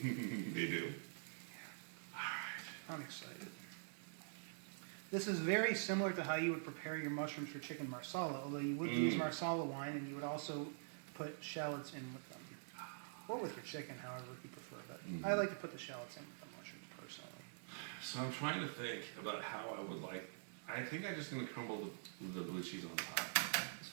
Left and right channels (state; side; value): silent; left; digital silence